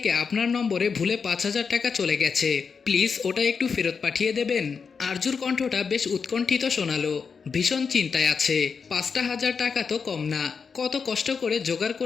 আপনার নম্বরে ভুলে 5,000 টাকা চলে গেছে, প্লিজ ওটা একটু ফেরত পাঠিয়ে দেবেন। আরজুর কণ্ঠটা বেশ উৎকণ্ঠিত শোনালো, ভীষণ চিন্তায় আছে। 5,000 টাকা তো কম না, কত কষ্ট করে জোগাড়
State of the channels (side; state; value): right; quieter; 5.7 dB